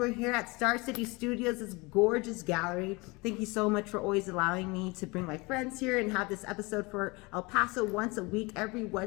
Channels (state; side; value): quieter; right; 25.6 dB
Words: here at Star City Studios, this gorgeous gallery. Thank you so much for always allowing me to bring my friends here and have this episode for El Paso once a week, every